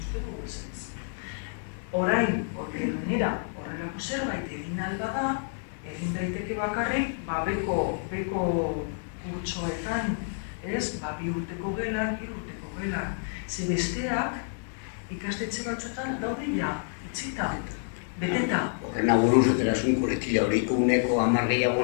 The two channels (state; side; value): silent; right; 59 dB below the other